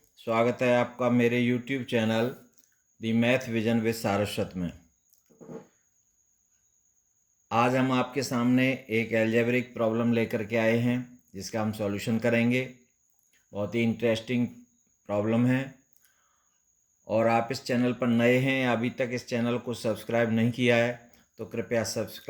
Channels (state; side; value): identical; both; correlation 1.00